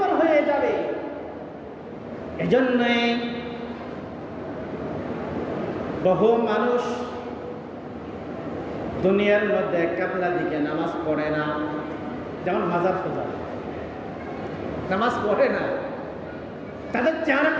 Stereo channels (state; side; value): identical; both; correlation 1.00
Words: হয়ে যাবে। এজন্যই বহু মানুষ দুনিয়ার মধ্যে কাবলা দিকে নামাজ পড়ে না, যেমন মাজার পূজা নামাজ পড়ে না, তাদের চেহারা